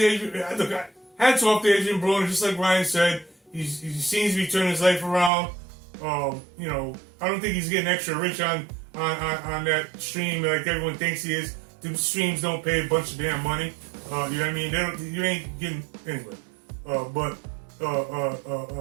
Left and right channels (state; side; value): drops out; left; at 5.3 s